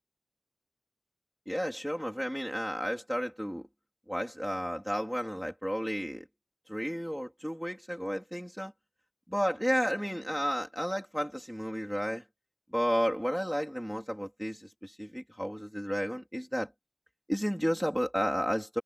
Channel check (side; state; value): both; identical; correlation 1.00